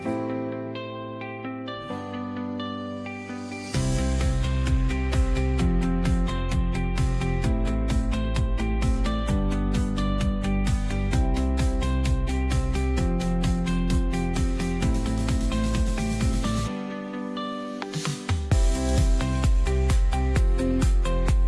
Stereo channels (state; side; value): identical; both; correlation 1.00